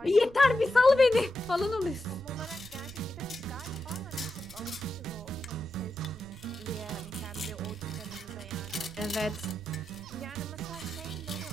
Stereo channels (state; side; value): noise; right; rumble, 18 dB below the sound